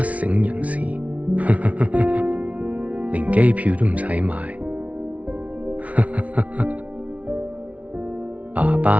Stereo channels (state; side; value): late; left; 0.067 ms